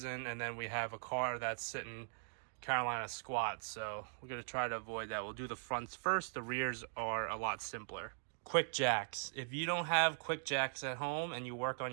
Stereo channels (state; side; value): silent; left; digital silence